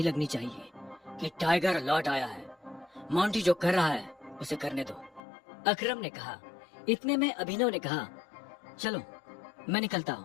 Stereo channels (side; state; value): right; drops out; at 5.2 s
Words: लगनी चाहिए कि टाइगर लौट आया है। मोंटी जो कर रहा है उसे करने दो, अकरम ने कहा। इतने में अभिनव ने कहा, चलो मैं निकलता